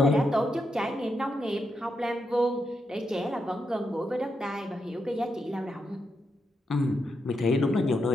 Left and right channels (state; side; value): normal; both; correlation 0.83